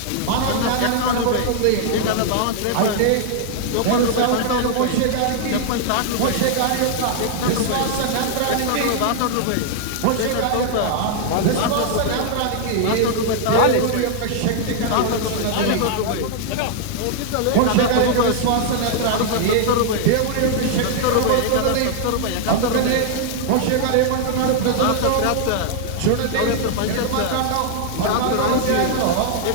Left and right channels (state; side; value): different; both; correlation 0.00